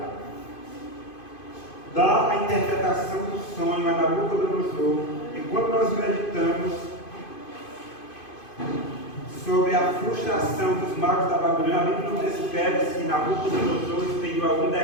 dar a interpretação do sonho a Nabucodonosor. E quando nós meditamos sobre a frustração dos magos da Babilônia, a Bíblia não descreve se Nabucodonosor expediu algum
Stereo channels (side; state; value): right; late; 2.5 ms